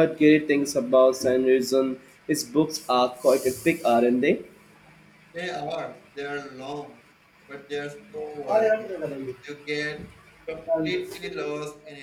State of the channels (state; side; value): identical; both; correlation 1.00